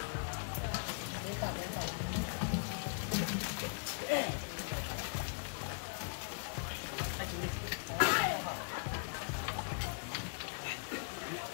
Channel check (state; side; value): silent; right; 52 dB below the other